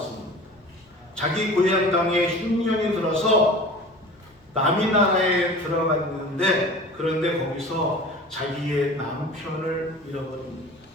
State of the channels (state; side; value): normal; both; correlation 0.39